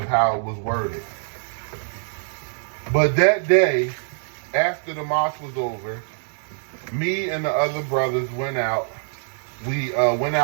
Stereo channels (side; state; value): left; silent; 60 dB below the other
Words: how it was worded. But that day, after the mosque was over, me and the other brothers went out. We went